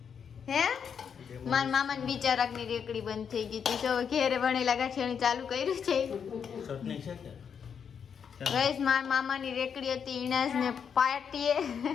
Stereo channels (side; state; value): right; quieter; 7.2 dB